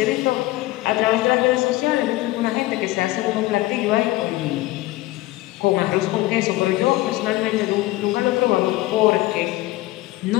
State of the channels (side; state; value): right; quieter; 18.1 dB